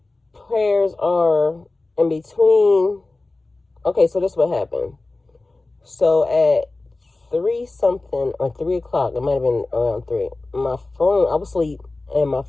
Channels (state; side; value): quieter; right; 3.2 dB